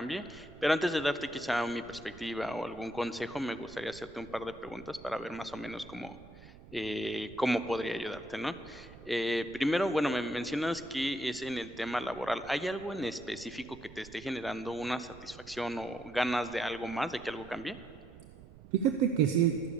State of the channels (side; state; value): right; noise; rumble, 19 dB below the sound